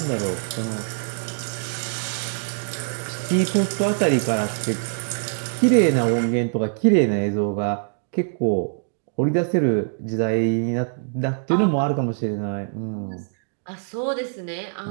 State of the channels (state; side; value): silent; left; digital silence